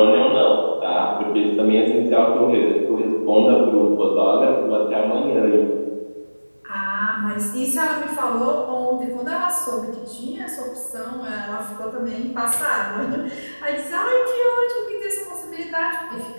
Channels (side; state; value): both; inverted; correlation -1.00